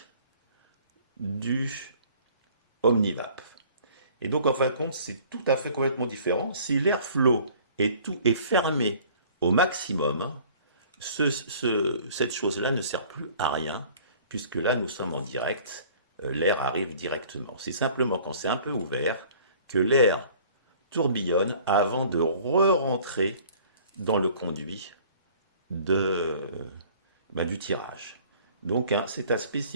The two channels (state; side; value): inverted; both; correlation -0.51